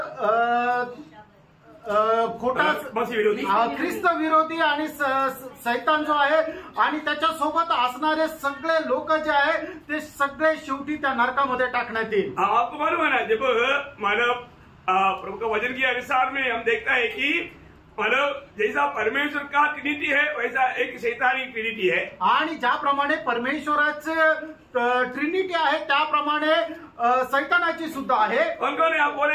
खोटा मसीह विरोधी ख्रिस्त विरोधी आणि सैतान जो आहे आणि त्याच्या सोबत असणारे सगळे लोक जे आहे ते सगळे शेवटी त्या नरकामध्ये टाकण्यात येईल। आपको मालूम है ना, जब मानव प्रभु का वचन के अनुसार में हम देखता है कि मानव जैसा परमेश्वर का ट्रिनिटी है वैसा एक शैतानी ट्रिनिटी है। आणि ज्याप्रमाणे परमेश्वराचे ट्रिनिटी आहे त्याप्रमाणे सैतानाची सुद्धा आहे। कौन कौन है आप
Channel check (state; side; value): identical; both; correlation 1.00